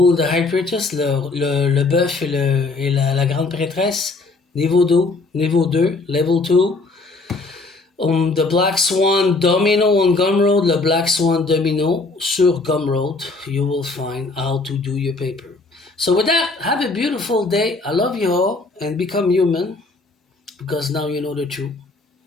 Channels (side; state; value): right; quieter; 3.6 dB